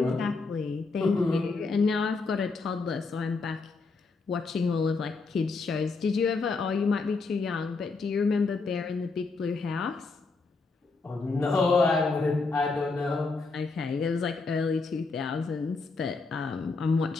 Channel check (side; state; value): right; quieter; 4.0 dB